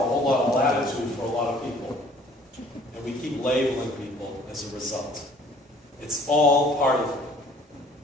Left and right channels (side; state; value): both; normal; correlation 0.55